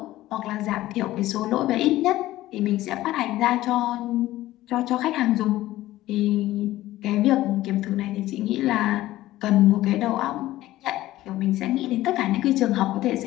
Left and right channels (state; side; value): quieter; right; 15.7 dB